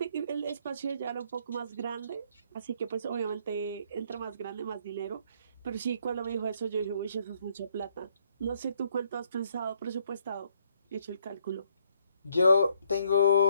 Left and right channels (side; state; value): both; inverted; correlation -0.69